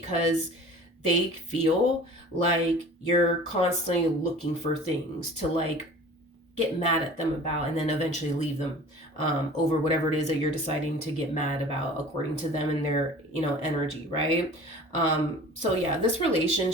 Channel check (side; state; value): both; normal; correlation 0.43